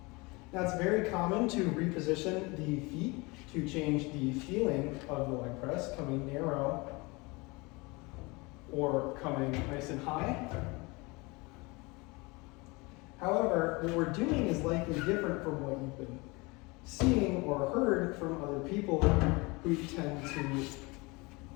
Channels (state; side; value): quieter; right; 25.7 dB